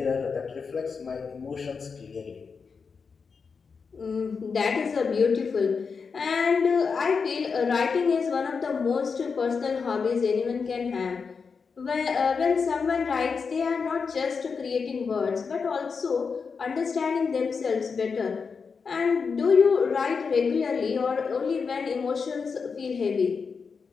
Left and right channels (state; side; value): quieter; right; 5.4 dB